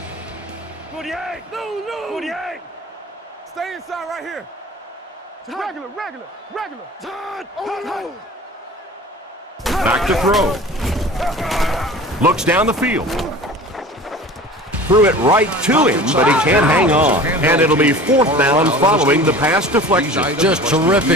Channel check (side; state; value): both; normal; correlation 0.40